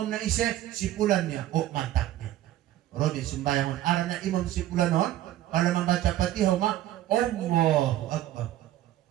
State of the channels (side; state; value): left; quieter; 13.7 dB